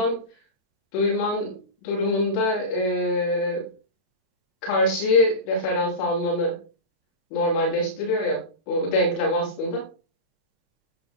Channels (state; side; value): late; right; 31 ms